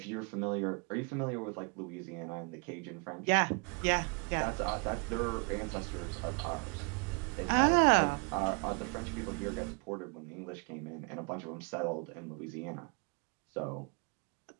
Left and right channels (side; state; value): left; quieter; 34.0 dB